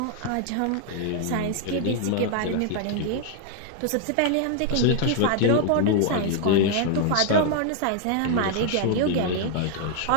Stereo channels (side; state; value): both; different; correlation 0.00